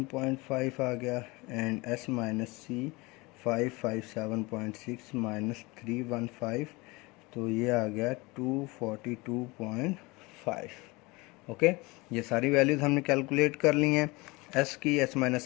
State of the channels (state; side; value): quieter; right; 24.1 dB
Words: आ गया। And S minus C 557.6 minus 315, तो ये आ गया 242.5। ओके, ये सारी वैल्यूज़ हमने कैलकुलेट कर ली हैं, एस की, S